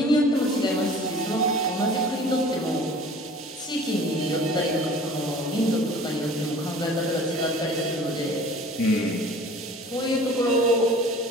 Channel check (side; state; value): both; normal; correlation 0.46